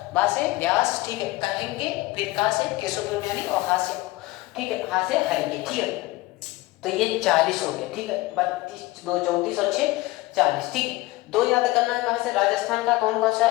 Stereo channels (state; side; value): quieter; right; 19.3 dB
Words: बा से व्यास, ठीक है, कहेंगे, फिर का से केशवयानी, और हा से, ठीक है, हा से हरेंगे, ठीक है। तो ये 40 हो गया, ठीक है, 32 2 34 और 6 40, ठीक है। 2 याद करना है कहाँ से, राजस्थान का कौन सा,